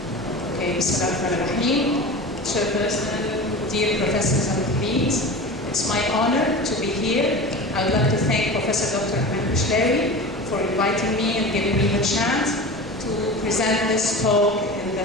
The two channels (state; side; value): normal; both; correlation 0.32